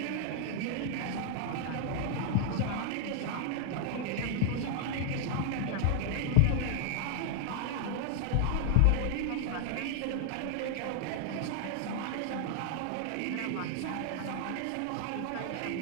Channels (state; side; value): different; both; correlation 0.00